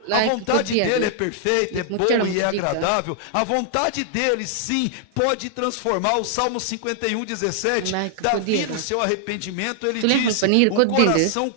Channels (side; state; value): both; different; correlation 0.00